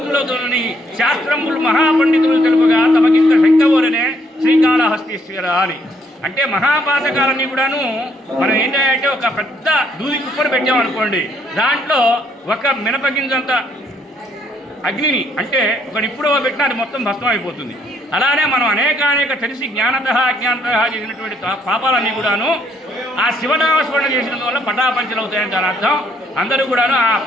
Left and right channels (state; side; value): normal; both; correlation 0.69